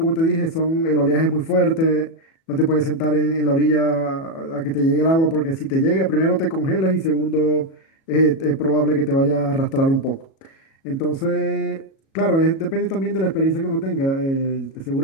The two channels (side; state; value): right; late; 37 ms